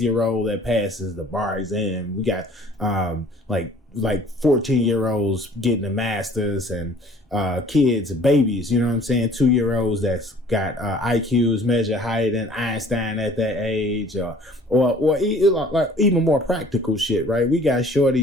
that passes the bar exam. We got like 14-year-olds getting a master's, and kids, babies, you know what I'm saying, 2-year-olds that's got IQs measure higher than Einstein at that age, or like even more practical shit, right? We got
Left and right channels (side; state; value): both; normal; correlation 0.52